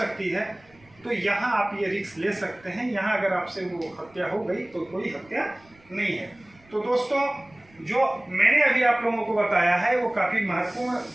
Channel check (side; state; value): right; noise; rumble, 29 dB below the sound